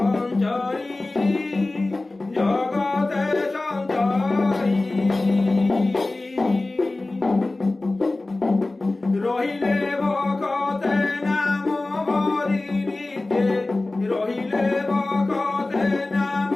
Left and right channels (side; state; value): right; quieter; 3.0 dB